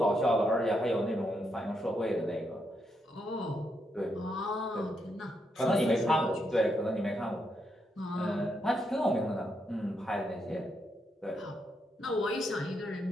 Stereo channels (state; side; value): normal; both; correlation 0.80